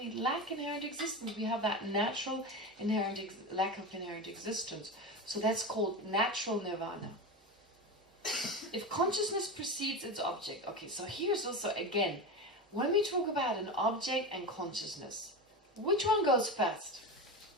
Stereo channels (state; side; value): normal; both; correlation 0.22